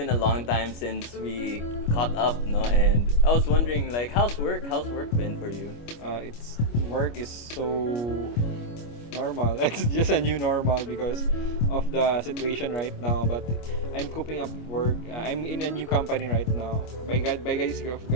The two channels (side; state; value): right; late; 25 ms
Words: a long time since we caught up, no? And I was wondering, like, how's work? How's work been for you? It's work is so normal. It's just a new normal because of the situation right now. But I'm coping up work. I'm in a new company right now. By grace of